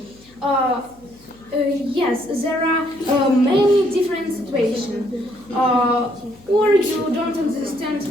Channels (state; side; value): noise; left; hum, 28 dB below the sound